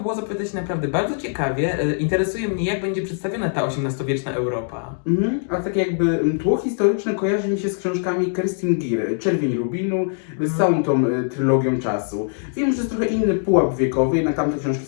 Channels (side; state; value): right; silent; digital silence